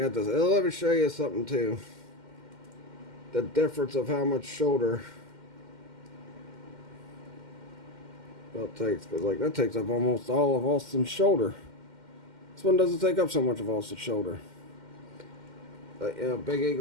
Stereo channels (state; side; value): late; left; 2.1 ms